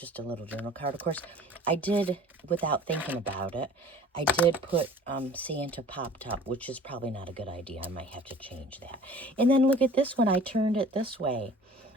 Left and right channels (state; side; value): normal; both; correlation 0.47